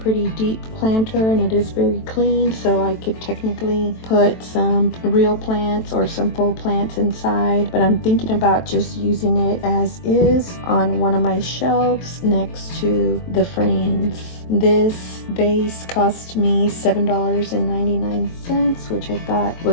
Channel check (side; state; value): right; late; 23 ms